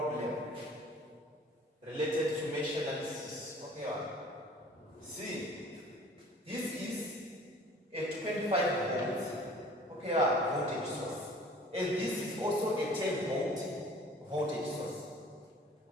related to mesh analysis. Okay, see, this is a 25 volts voltage source, and this is also a 10 volt voltage source.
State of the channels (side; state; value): both; normal; correlation 0.49